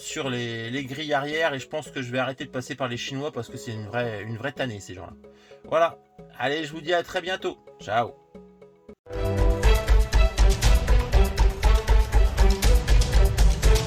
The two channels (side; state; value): both; identical; correlation 1.00